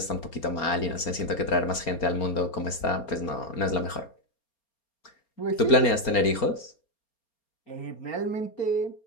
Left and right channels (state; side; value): late; right; 4.3 ms